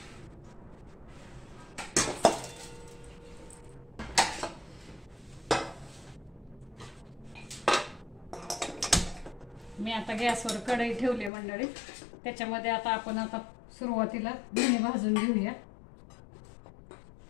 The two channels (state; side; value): drops out; right; at 11.3 s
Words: मी आता गॅसवर कढई ठेवली मंडळी। त्याच्यामध्ये आता सुरुवातीला धणे भाजून घेऊया।